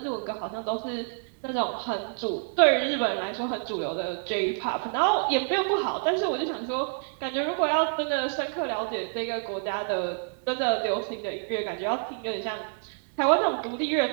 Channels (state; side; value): silent; left; digital silence